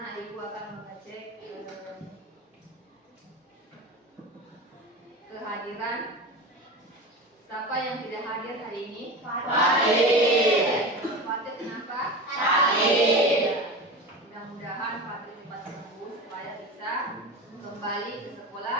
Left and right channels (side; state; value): both; normal; correlation 0.28